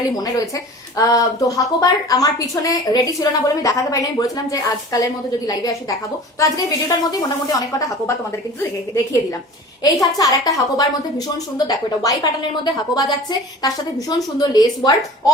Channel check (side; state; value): both; normal; correlation 0.40